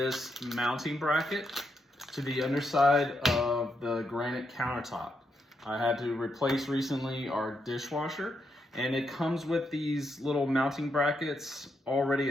mounting bracket to the underside of the granite countertop. I had to replace recently our dishwasher, and it comes with these little mounting brackets already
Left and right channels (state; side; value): normal; both; correlation 0.81